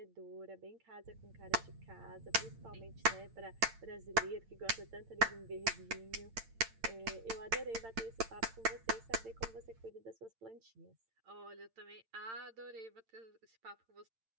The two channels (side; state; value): left; late; 8.9 ms